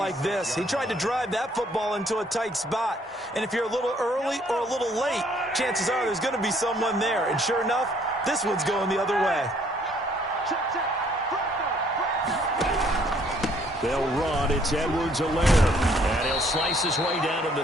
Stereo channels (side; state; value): both; normal; correlation 0.64